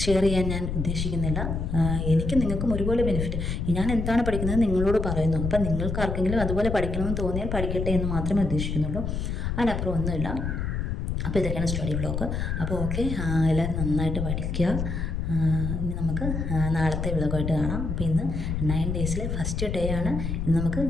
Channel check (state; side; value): noise; left; rumble, 2 dB below the sound